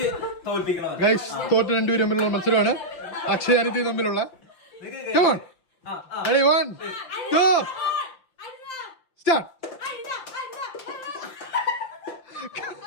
ഗൈസ് തോറ്റ് രണ്ടുപേരും തമ്മിലുള്ള മത്സരമാണ്. അക്ഷയ് അനിതി തമ്മിലുള്ള. Come on. Ready, 1, 2, start.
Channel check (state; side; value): late; right; 5.8 ms